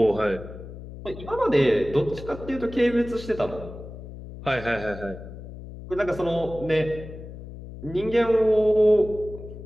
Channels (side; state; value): left; noise; hum, 13 dB below the sound